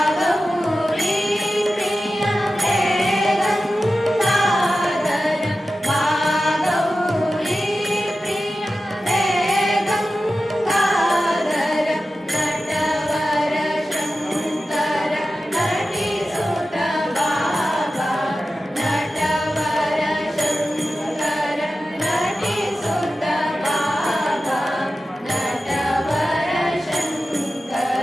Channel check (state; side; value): normal; both; correlation 0.93